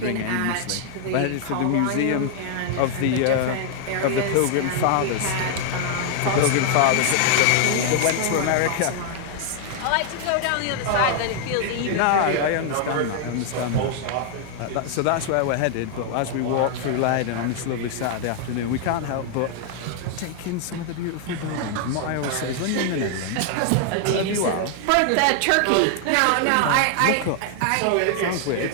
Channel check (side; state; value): both; different; correlation 0.00